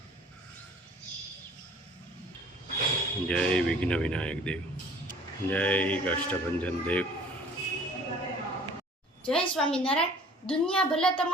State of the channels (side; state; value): both; normal; correlation 0.51